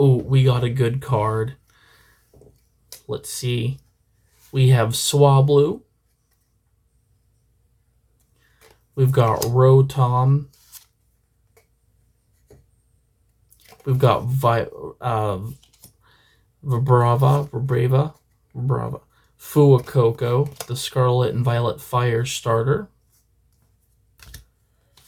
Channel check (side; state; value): both; identical; correlation 1.00